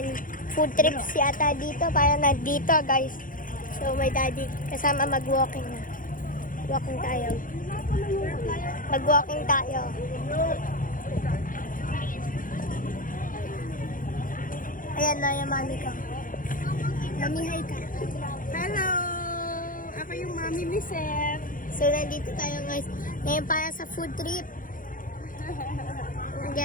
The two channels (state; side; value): late; right; 0.40 ms